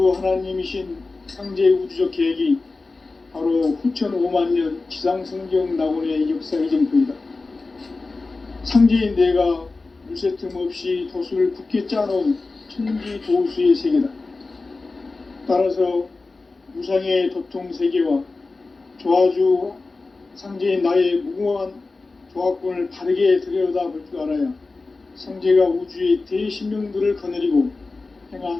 하나님이신 상제 우주적 계획이 바로 후천 5만년 지상성경 낙원의 역사의 정토이다. 상제인 내가 물새 틈 없이 도수를 굳게 짜놓은 천지 도수의 세계다. 따라서 무상의 도통 세계와 조화주 상제인 나의 무궁한 조화권을 바르게 들여다볼 줄 알아야 상제가 우주의 대신명들을 거느리고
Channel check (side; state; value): right; quieter; 3.6 dB